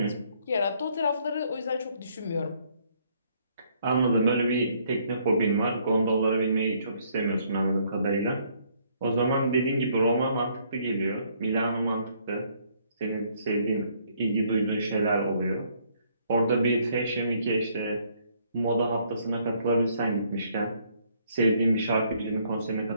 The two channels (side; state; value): both; inverted; correlation -0.67